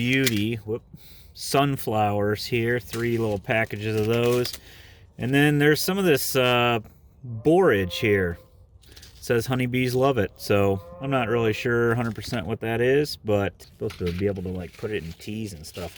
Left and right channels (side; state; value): both; identical; correlation 1.00